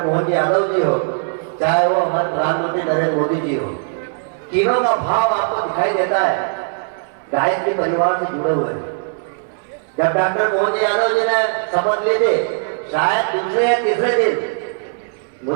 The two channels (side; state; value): left; silent; 67 dB below the other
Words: मोहन जी यादव जी हो, चाहे वो हमारे प्रधानमंत्री नरेंद्र मोदी जी हो, तीनों का भाव आपको दिखाई देता है गायत्री परिवार से जुड़े हुए। जब डॉक्टर मोहन जी यादव जी ने शपथ ली थी, शायद दूसरे या तीसरे दिन,